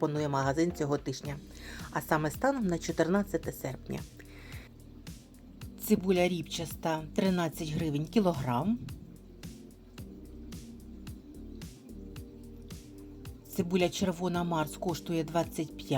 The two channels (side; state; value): both; identical; correlation 1.00